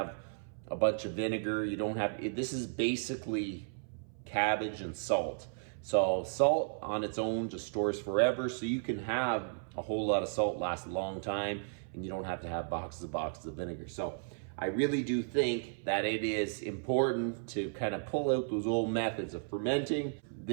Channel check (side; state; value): left; silent; 55 dB below the other